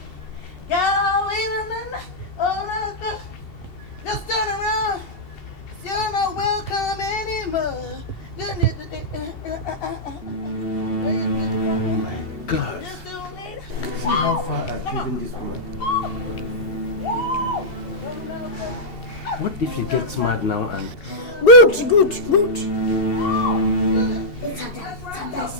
Just turn around. You're not welcome anymore. Oh my God. See how far I've given this woman. What if you get smart now and... Good. Let's have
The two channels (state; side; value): late; right; 2.7 ms